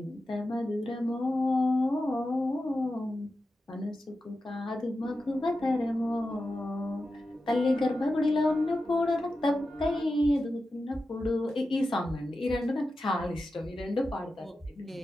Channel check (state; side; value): normal; both; correlation 0.92